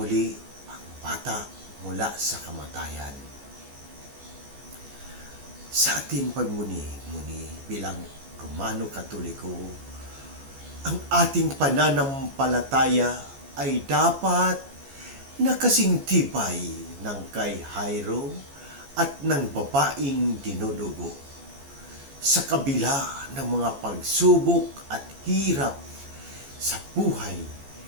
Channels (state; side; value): late; left; 14 ms